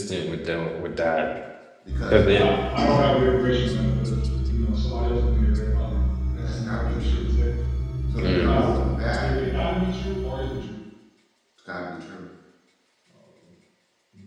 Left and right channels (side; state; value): both; identical; correlation 1.00